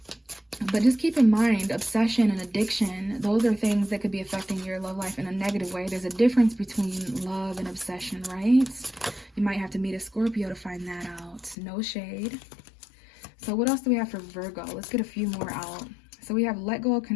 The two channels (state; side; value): drops out; right; at 11.6 s